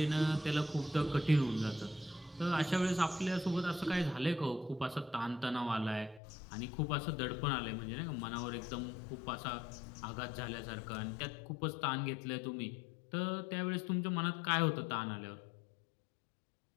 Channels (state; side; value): drops out; right; at 6.2 s